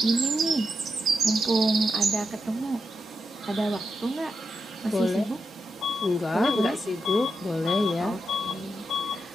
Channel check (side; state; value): both; normal; correlation 0.85